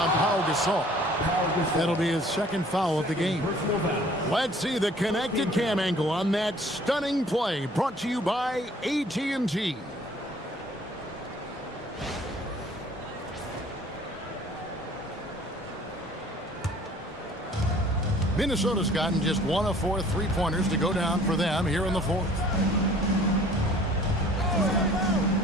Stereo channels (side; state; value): both; normal; correlation 0.53